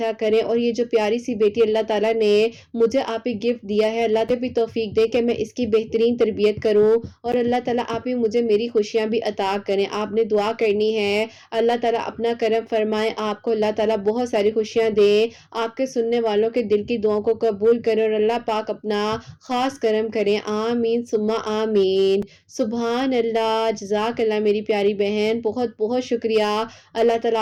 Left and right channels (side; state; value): both; identical; correlation 1.00